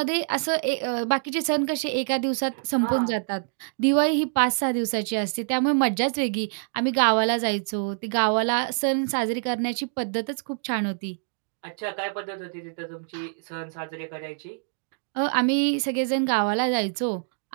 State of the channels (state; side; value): silent; left; digital silence